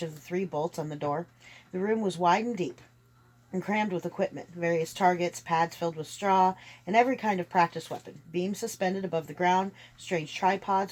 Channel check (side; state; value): both; identical; correlation 1.00